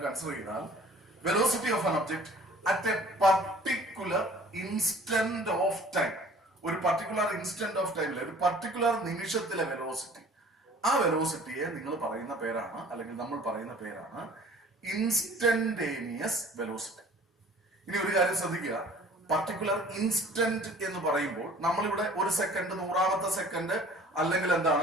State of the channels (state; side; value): normal; both; correlation 0.49